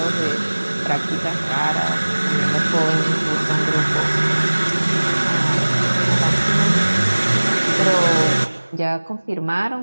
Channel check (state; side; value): inverted; both; correlation -1.00